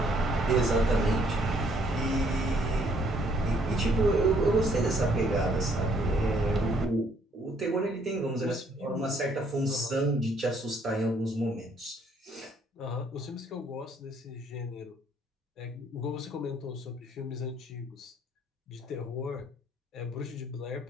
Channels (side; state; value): both; normal; correlation 0.65